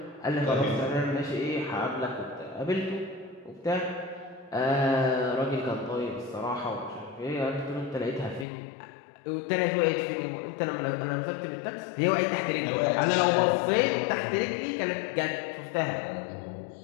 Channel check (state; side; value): drops out; right; at 8.5 s